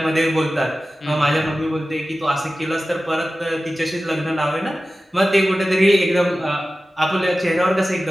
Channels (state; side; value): normal; both; correlation 0.95